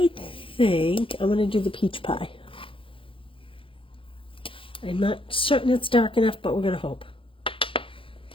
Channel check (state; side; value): late; right; 0.25 ms